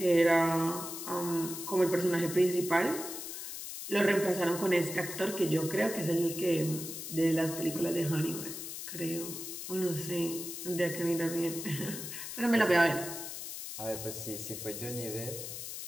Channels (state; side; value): noise; left; hiss, 8 dB below the sound